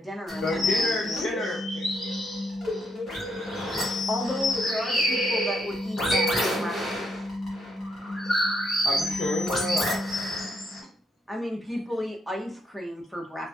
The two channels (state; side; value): normal; both; correlation 0.75